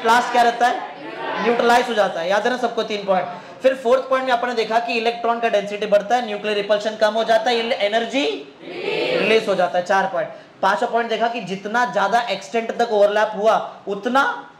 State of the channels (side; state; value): both; identical; correlation 1.00